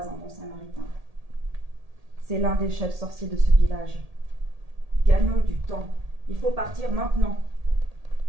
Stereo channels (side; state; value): left; late; 1.8 ms